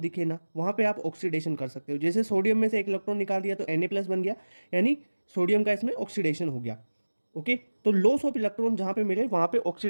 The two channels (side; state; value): both; inverted; correlation -1.00